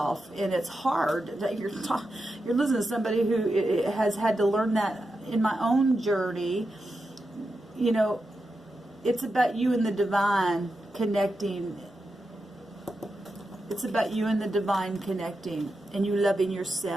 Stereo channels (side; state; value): both; normal; correlation 0.88